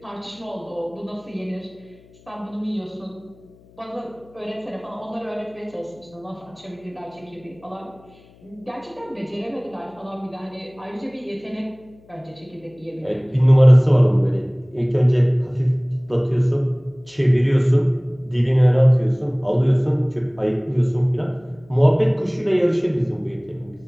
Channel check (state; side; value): noise; left; hum, 27 dB below the sound